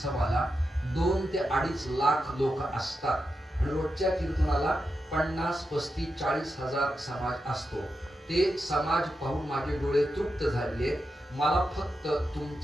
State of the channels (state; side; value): normal; both; correlation 0.88